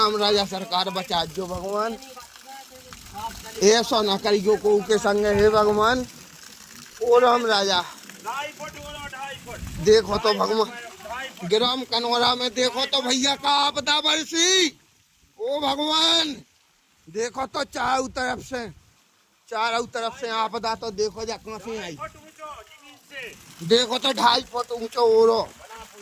राजा सरकार बचा जो भगवान। ऐसा ना करियो को के संग हे भगवान। ओ राम राजा 2.5 फुट। देखो तो भगवान ग्राम कनौरा में देखो तो भैया का आपदा बरसी। ओ भगवान देखो तो चारों तरफ से आपदा तो देखो जा कहाँ से आई। देखो तो 2.5 फुट ऊंचो ओरो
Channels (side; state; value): both; identical; correlation 1.00